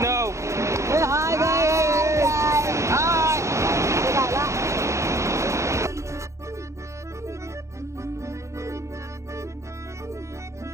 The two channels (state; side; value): late; left; 0.14 ms